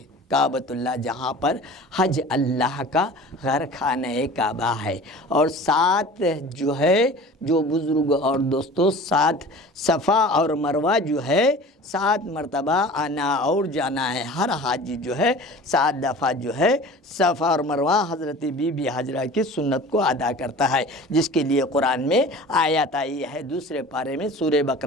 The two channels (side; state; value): both; normal; correlation 0.41